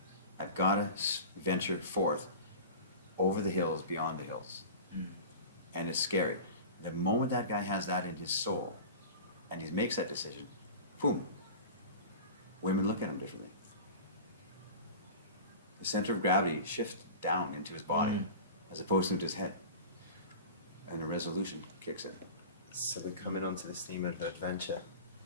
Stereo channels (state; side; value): inverted; both; correlation -0.35